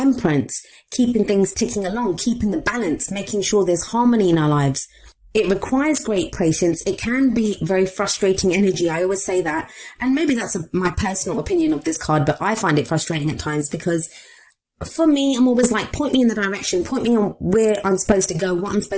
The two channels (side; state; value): both; identical; correlation 1.00